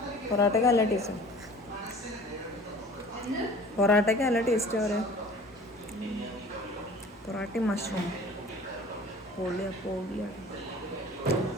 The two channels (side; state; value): both; normal; correlation 0.45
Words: പൊറോട്ടയ്ക്ക് നല്ല ടേസ്റ്റ്. പൊറോട്ടയ്ക്ക് നല്ല ടേസ്റ്റ് പറയാം. പൊറോട്ടയും മഷ്റൂം പൊളിയാണ്.